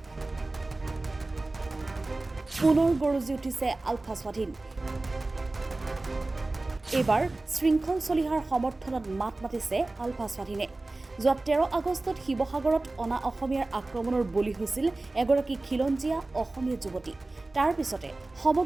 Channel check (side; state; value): left; quieter; 3.0 dB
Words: পুনৰ গৰজি উঠিছে আলফা স্বাধীন এইবাৰ শৃংখল চলিহাৰ সমৰ্থনত মাত মাতিছে আলফা স্বাধীনে যোৱা 13 আগষ্টত শিৱসাগৰত অনা অসমীয়াৰ আক্ৰমণৰ বলি হৈছিল এগৰাকী খিলঞ্জীয়া অসমীয়া যুৱতী তাৰ পিছতে